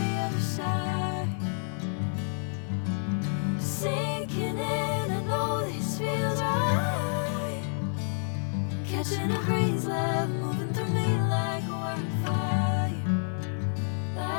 other side. Sinking in, I know this feels right. Catching a breeze, love moving through me like a wildfire,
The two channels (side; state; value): right; silent; 59 dB below the other